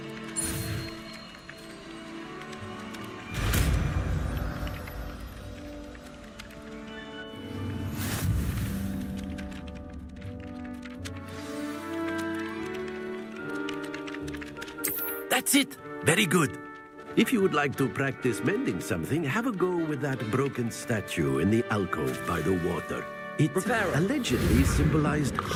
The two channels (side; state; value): both; identical; correlation 1.00